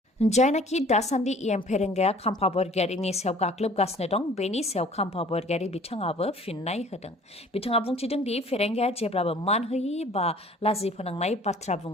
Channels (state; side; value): normal; both; correlation 0.51